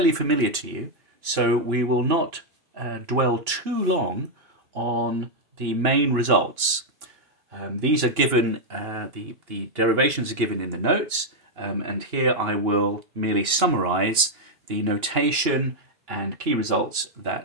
familiar to you, so we will not dwell too long on the main results. These are given, the derivations are given in the notes, and here I will merely summarize the notation and key results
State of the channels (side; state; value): left; late; 2.9 ms